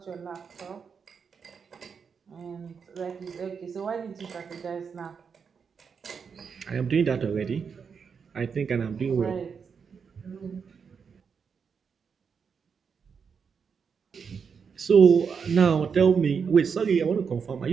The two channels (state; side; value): quieter; left; 6.2 dB